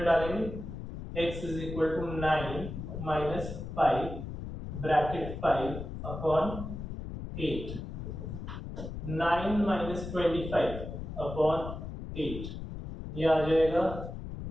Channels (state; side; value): noise; left; rumble, 8 dB below the sound